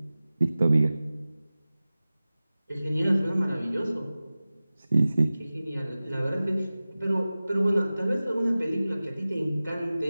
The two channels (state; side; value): inverted; both; correlation -0.97